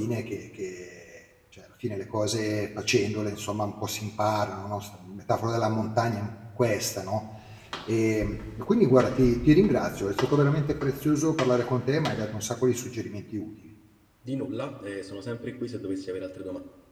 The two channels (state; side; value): identical; both; correlation 1.00